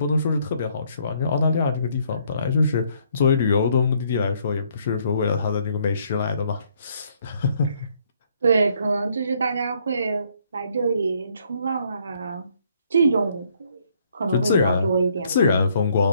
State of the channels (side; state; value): both; inverted; correlation -0.67